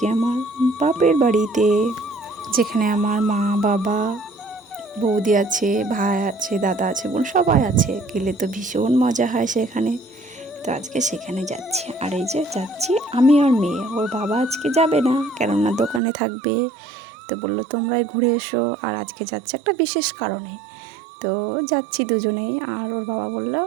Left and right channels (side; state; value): left; drops out; at 16.0 s